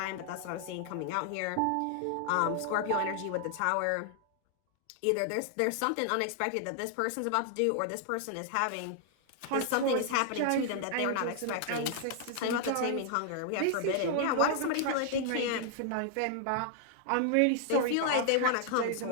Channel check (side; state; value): both; different; correlation 0.00